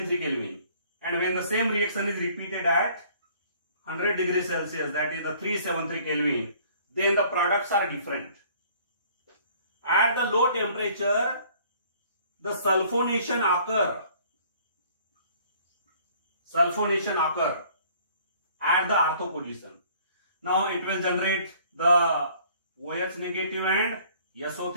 Kelvin, and when the same reaction is repeated at 100 degrees Celsius, that is the 373 Kelvin, then the products are different. At the low temperature, the sulfonation occur at the ortho position. Now it will generate the OH negative and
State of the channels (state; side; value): inverted; both; correlation -0.56